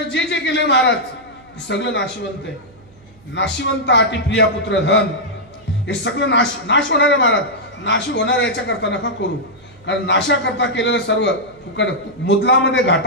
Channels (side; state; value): right; noise; hum, 28 dB below the sound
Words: जे जे केले महाराज सगळं नाशिवंत आहे। नाशिवंत आटी प्रिया पुत्र धन हे सगळं नाश होणार आहे महाराज। नाश होणार याच्याकरता नका करू, कारण नाशाकरता केलेलं सर्व फुकट मुदलामध्ये